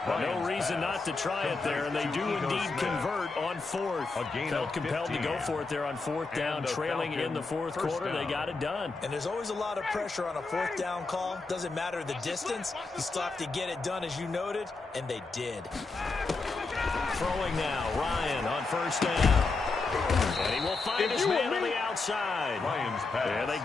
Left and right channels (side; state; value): right; quieter; 3.9 dB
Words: No reason not to try it there, and they do indeed convert on 4th. Felt compelled to go for it there on 4th down, trailing in the 4th quarter. They got it done. And there's always a lot of pressure on a 4th down call. Doesn't matter the distance. You still have to get it done, as you noted, and they did. Throwing now, Ryan on 1st down. And he will find his man on the outside. And they